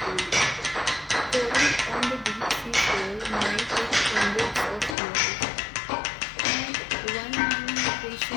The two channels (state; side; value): drops out; right; at 5.0 s